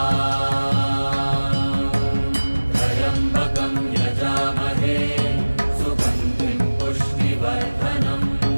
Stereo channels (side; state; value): both; inverted; correlation -1.00